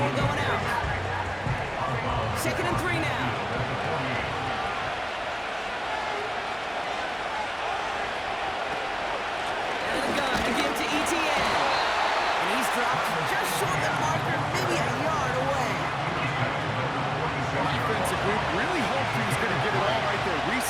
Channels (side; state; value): both; identical; correlation 1.00